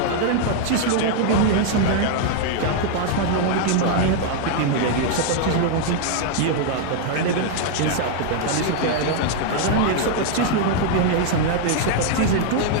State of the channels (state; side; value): different; both; correlation 0.00